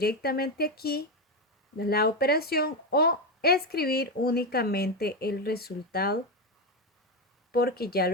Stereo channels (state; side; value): normal; both; correlation 0.11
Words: aquí la operación o escribir únicamente el resultado porque ya